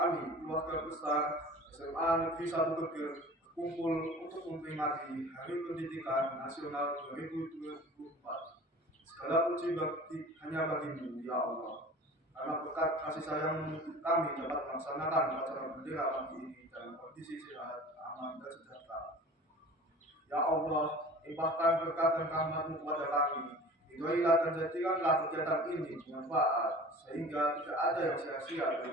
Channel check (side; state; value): both; normal; correlation 0.41